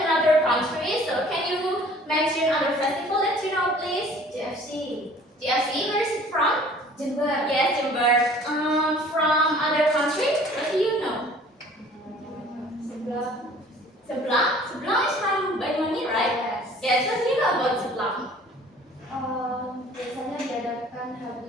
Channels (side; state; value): both; normal; correlation 0.51